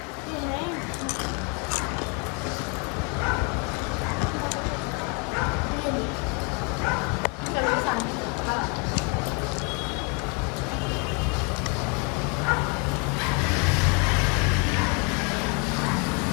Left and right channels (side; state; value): right; quieter; 34.5 dB